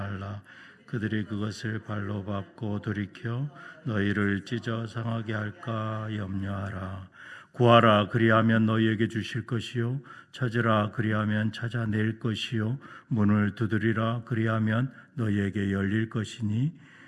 그들이 그것을 발로 밟고 돌이켜 너희를 찢어 상하게 할까 염려하라. 구하라, 그리하면 너희에게 주실 것이요 찾으라, 그리하면 찾아낼 것이요 문을 두드리라, 그리하면 너희에게 열릴 것이니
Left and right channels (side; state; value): both; identical; correlation 1.00